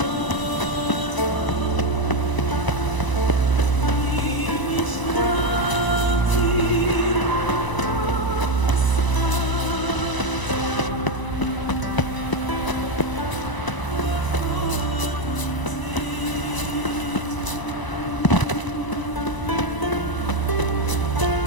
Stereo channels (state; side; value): late; right; 1.0 ms